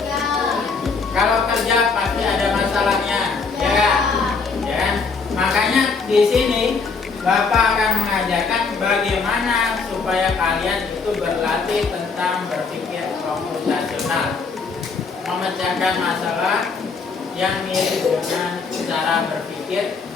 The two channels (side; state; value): right; quieter; 4.8 dB